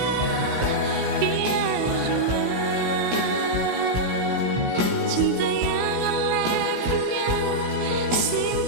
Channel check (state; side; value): late; left; 16 ms